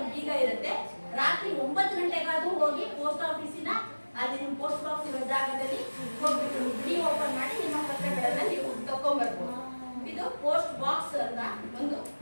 ಬೀಗ ಇರುತ್ತೆ, ರಾತ್ರಿ 9 ಗಂಟೆಗಾದ್ರೂ ಹೋಗಿ ಪೋಸ್ಟ್ ಆಫೀಸಿನ ಅಲ್ಲಿ ನಿಮ್ಮ ಪೋಸ್ಟ್ ಬಾಕ್ಸ್ ಇರೋ ಜಾಗದಲ್ಲಿ ಹೋಗ್ಬಿಟ್ಟು ಬಿಡಿ ಓಪನ್ ಮಾಡಿ ನಿಮ್ಮ ಪತ್ರಗಳನ್ನ ನೀವು ತಕೊಂಡ್ಬರ್ಬೋದು. ಇದು ಪೋಸ್ಟ್ ಬಾಕ್ಸ್ ಅಂತ ಒಂದು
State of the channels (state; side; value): inverted; both; correlation -1.00